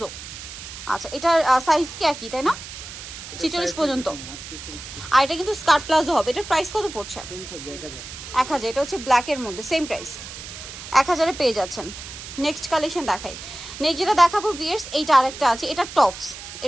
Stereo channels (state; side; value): noise; right; hiss, 12 dB below the sound